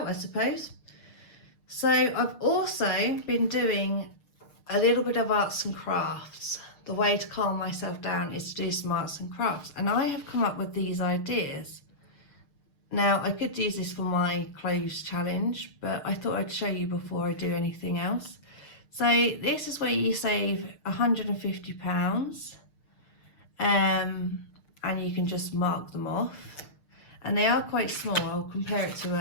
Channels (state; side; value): late; right; 6.6 ms